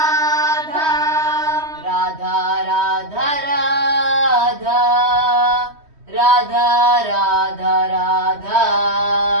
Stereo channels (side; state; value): left; late; 3.1 ms